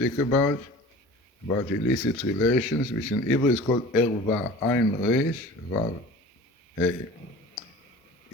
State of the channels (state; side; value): normal; both; correlation 0.40